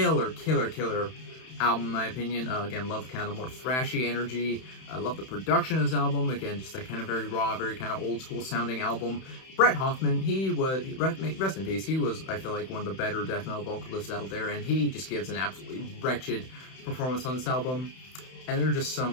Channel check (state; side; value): late; right; 31 ms